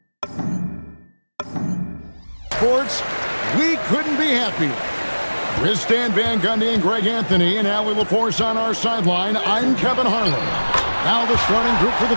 Sports, we couldn't be happier. With Stan Van Gundy and Greg Anthony and Allie LaForce on our sideline, I'm Kevin Harlan. Now the starting group for the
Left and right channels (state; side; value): inverted; both; correlation -1.00